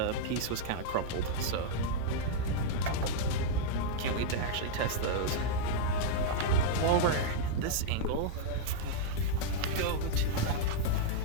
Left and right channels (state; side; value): different; both; correlation -0.01